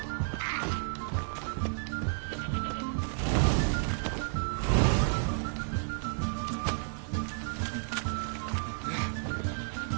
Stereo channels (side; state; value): left; silent; digital silence